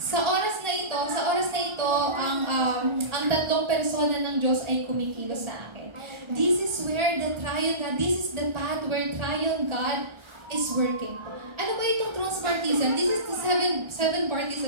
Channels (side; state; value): left; late; 1.3 ms